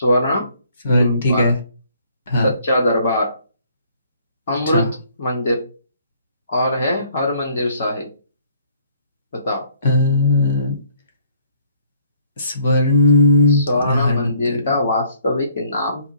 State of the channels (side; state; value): both; inverted; correlation -0.62